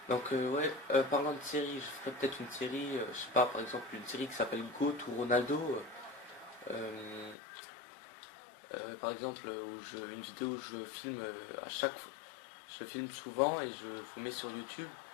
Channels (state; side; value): drops out; right; at 7.4 s